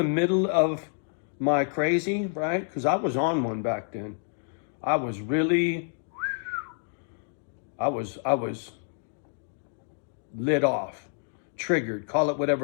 middle of my crazy, right? Because I was on one back then. I was lit off, triggered, call it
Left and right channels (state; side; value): silent; right; 57 dB below the other